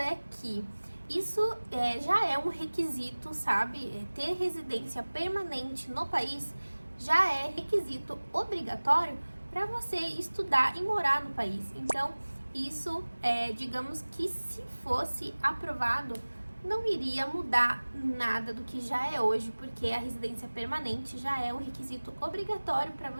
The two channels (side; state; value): both; inverted; correlation -1.00